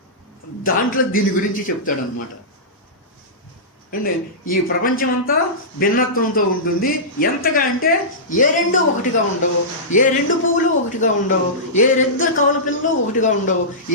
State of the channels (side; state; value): both; normal; correlation -0.17